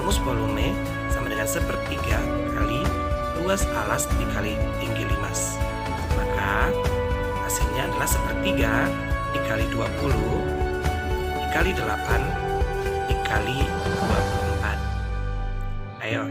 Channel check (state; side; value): identical; both; correlation 1.00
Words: volume sama dengan sepertiga kali luas alas dikali tinggi limas. Maka hasilnya adalah sepertiga dikali 20 dikali 8 dikali 24. Ayo